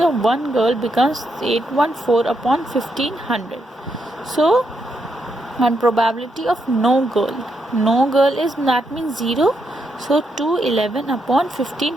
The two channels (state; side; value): normal; both; correlation 0.80